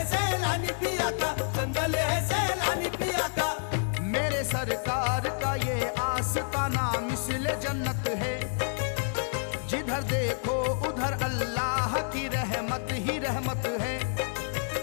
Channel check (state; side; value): silent; right; 59 dB below the other